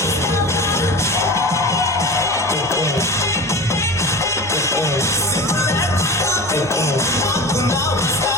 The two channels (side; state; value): both; normal; correlation 0.31